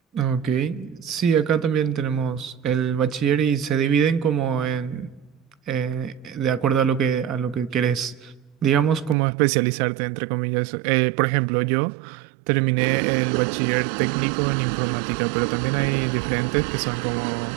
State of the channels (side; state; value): left; drops out; at 9.2 s